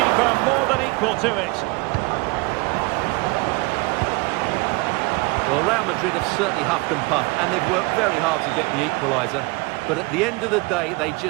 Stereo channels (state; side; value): quieter; left; 25.7 dB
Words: more than equal to it. Well, Real Madrid have certainly huffed and puffed, and they've worked very hard to get the equaliser. But at the end of the day, they